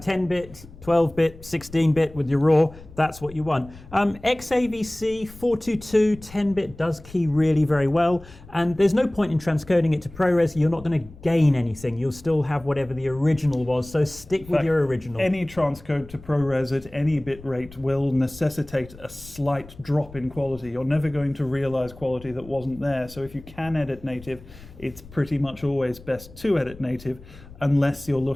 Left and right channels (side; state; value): left; noise; rumble, 19 dB below the sound